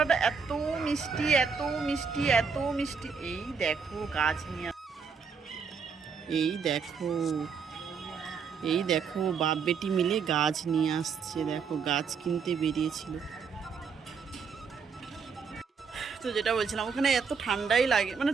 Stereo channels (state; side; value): quieter; left; 5.8 dB